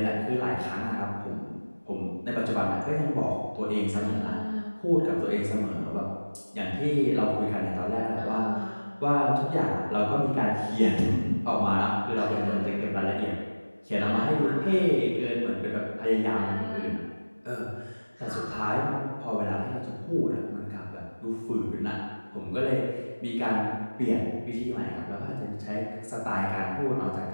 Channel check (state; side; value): inverted; both; correlation -1.00